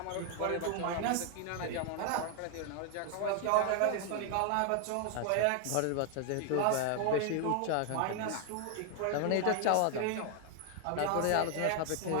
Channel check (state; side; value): different; both; correlation 0.00